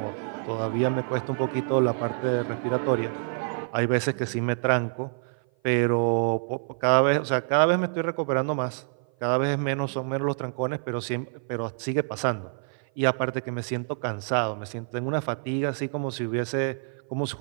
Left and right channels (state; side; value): silent; left; 55 dB below the other